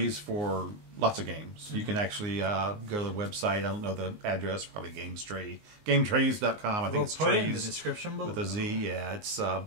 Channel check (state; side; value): late; left; 19 ms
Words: for lots of games. You can actually go to the website. I don't know the address. Probably GameTrays.com. I think We'll it's put it in the trays description below. with a Z. Yeah, it's